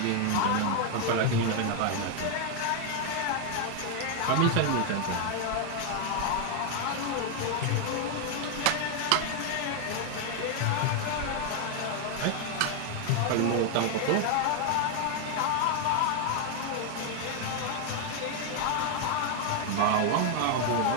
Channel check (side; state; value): both; different; correlation 0.01